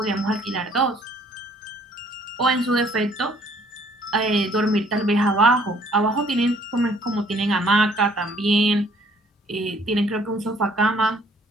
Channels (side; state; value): both; normal; correlation 0.60